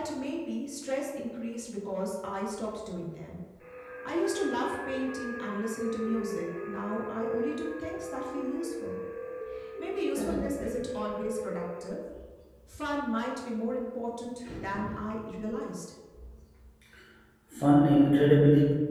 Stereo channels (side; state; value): both; identical; correlation 1.00